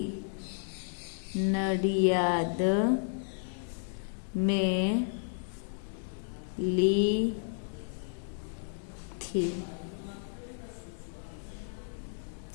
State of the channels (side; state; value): right; silent; 56 dB below the other